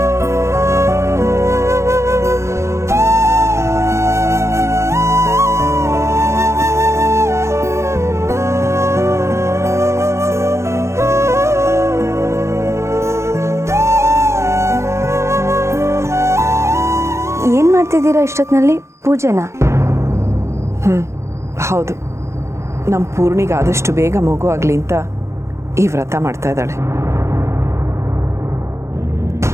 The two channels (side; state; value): left; late; 0.13 ms